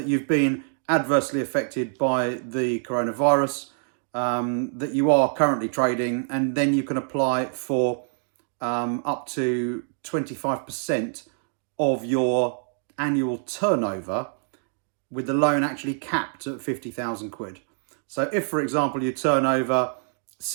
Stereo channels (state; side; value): silent; left; digital silence